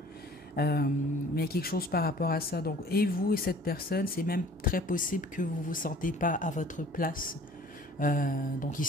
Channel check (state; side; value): normal; both; correlation 0.50